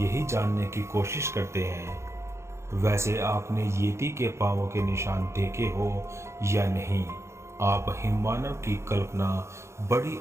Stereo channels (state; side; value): late; left; 0.13 ms